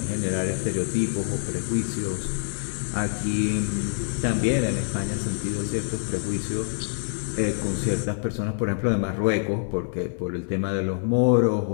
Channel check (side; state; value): right; silent; 61 dB below the other